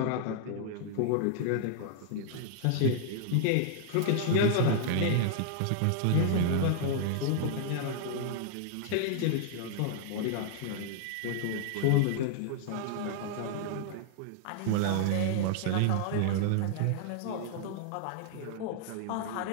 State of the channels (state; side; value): different; both; correlation -0.01